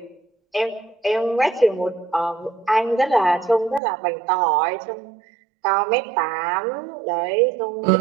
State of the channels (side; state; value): left; drops out; at 3.8 s